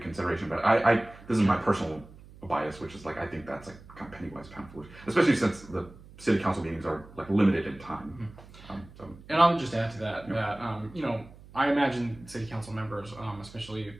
But I this is my personal bias, which is like I think that's like kind of penny wise, pound foolish, especially since the city council meetings are like limited in time. And I would just add to that that I imagine city council members, especially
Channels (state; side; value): noise; right; hum, 20 dB below the sound